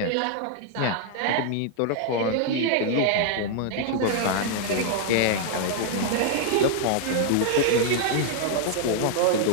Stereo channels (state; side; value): different; both; correlation 0.00